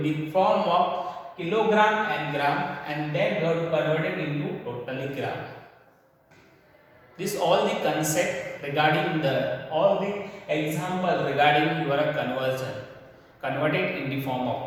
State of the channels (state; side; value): identical; both; correlation 1.00